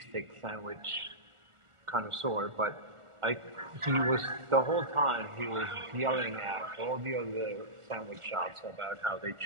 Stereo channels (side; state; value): left; late; 1.4 ms